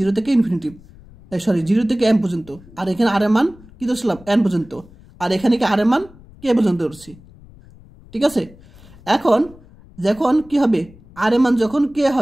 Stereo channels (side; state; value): left; noise; rumble, 23 dB below the sound